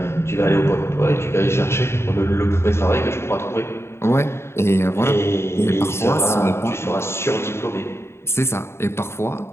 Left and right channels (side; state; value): right; late; 0.12 ms